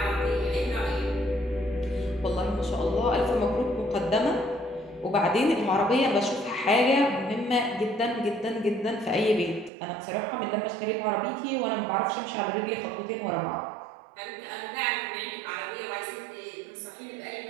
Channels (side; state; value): left; drops out; at 9.7 s